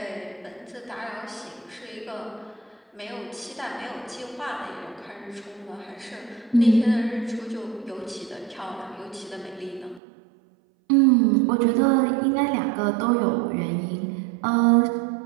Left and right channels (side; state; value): left; drops out; at 10.0 s